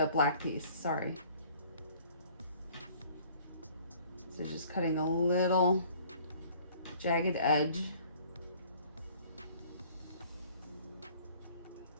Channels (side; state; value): both; inverted; correlation -0.54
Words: black piece, sorry. So just cutting a little jagged edge.